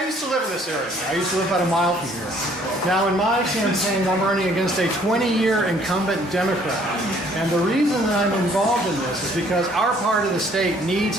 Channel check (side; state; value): both; normal; correlation 0.60